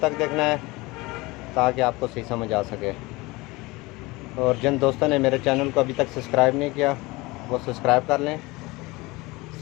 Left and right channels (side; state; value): right; quieter; 22.7 dB